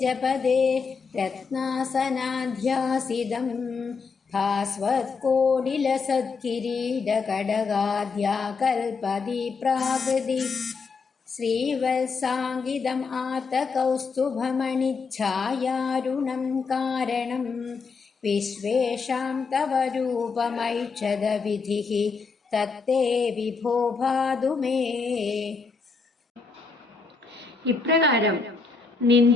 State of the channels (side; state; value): right; quieter; 4.8 dB